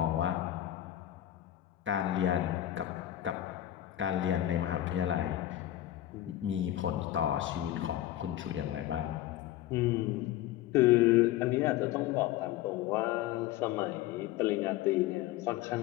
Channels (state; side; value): quieter; right; 13.5 dB